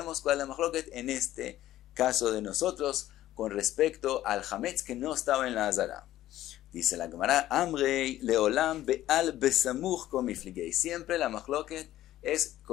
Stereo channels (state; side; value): quieter; right; 13.9 dB